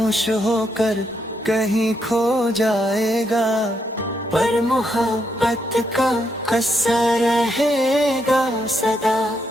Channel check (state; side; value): normal; both; correlation 0.78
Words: होकर कहीं खो जाएगा। पर मोहब्बत का असर रहेगा सदा,